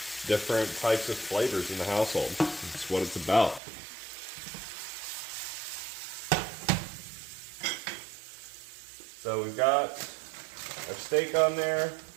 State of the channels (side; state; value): left; drops out; at 3.6 s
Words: different types of flavors in the household. That's what it's about. So we've got our steak on there.